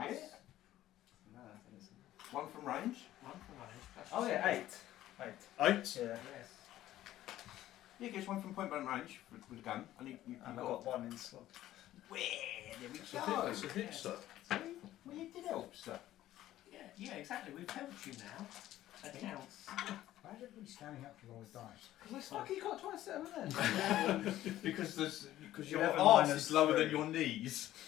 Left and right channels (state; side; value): quieter; right; 13.9 dB